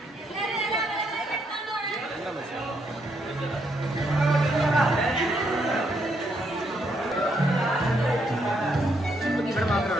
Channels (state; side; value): normal; both; correlation 0.75